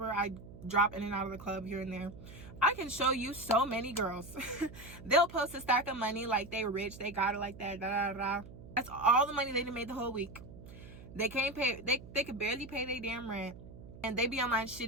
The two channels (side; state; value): right; noise; hum, 16 dB below the sound